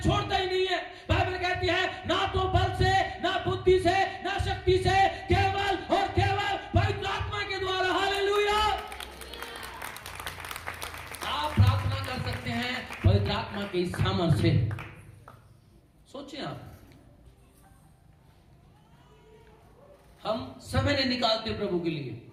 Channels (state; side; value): identical; both; correlation 1.00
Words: छोड़ता ही नहीं है। बाइबल कहती है ना तो बल से, ना बुद्धि से, ना शक्ति से, केवल और केवल पवित्र आत्मा के द्वारा। हालेलुया। आप प्रार्थना कर सकते हैं पवित्र आत्मा के सामर्थ्य से। सोचिए आप, हम समय नहीं निकालते प्रभु के लिए।